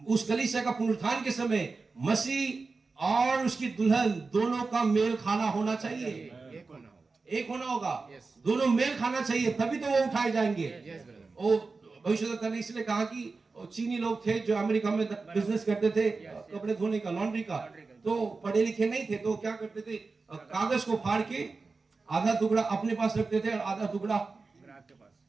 उस कलीसिया का पुनरुत्थान के समय मसीह और उसकी दुल्हन दोनों का मेल खाना होना चाहिए, एक होना होगा। एक होना होगा। Yes. दोनों मेल खाना चाहिए, तभी तो वो उठाए जाएंगे। Yes, brother. वो भविष्यवक्ता ने इसलिए कहा कि वो चीनी लोग थे जो अमेरिका में बिजनेस करते थे, कपड़े धोने का, लॉन्ड्री का, तो पढ़े लिखे नहीं थे, तो क्या करते थे, कागज को फाड़ के आधा टुकड़ा अपने पास रखते थे और आधा टुकड़ा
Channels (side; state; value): left; quieter; 4.1 dB